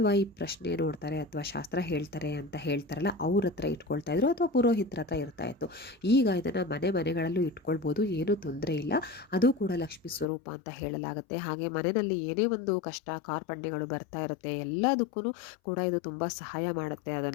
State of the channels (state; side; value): drops out; right; at 10.2 s